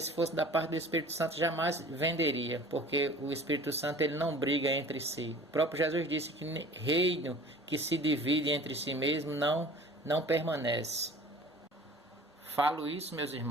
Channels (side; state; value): both; normal; correlation 0.45